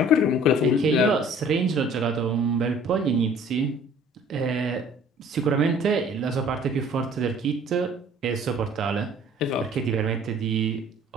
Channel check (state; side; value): normal; both; correlation 0.52